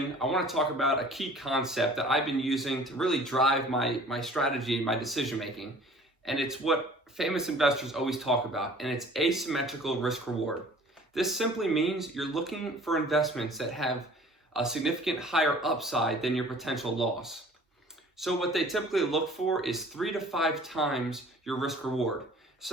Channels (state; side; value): normal; both; correlation 0.49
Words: I want to talk about a key concept that I've been using to really drive my strategy, my decision making, and it's what famous investors always talk about, and it's asymmetrical risk reward. This simply means you're looking for investments that have a significant higher upside than your potential loss. So what they typically look for is 3 to 5 times your risk reward.